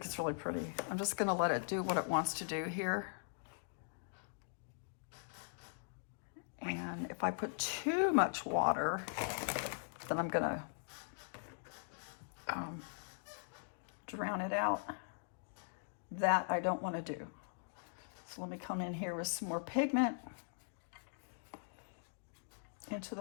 it's really pretty. I'm just gonna let it do what it wants to do here. And if I put too much water, then I'm gonna drown it out. That I don't want to do. So let me come in here with some more pigment into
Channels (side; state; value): right; silent; digital silence